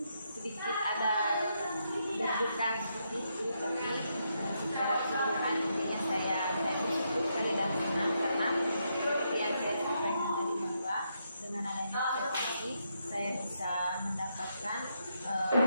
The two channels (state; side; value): inverted; both; correlation -0.80